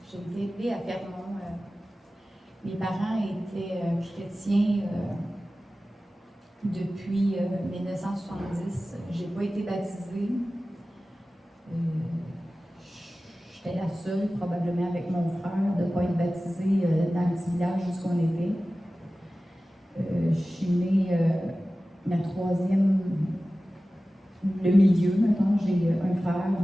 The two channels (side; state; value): both; normal; correlation 0.96